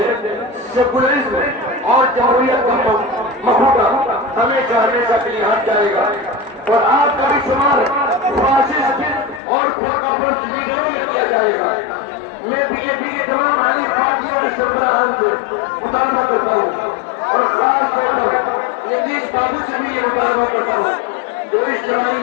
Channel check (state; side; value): drops out; right; at 9.4 s